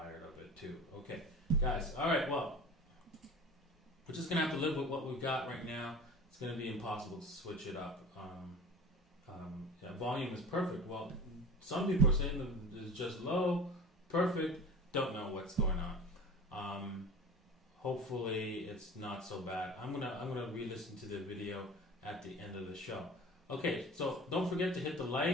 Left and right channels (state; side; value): normal; both; correlation 0.38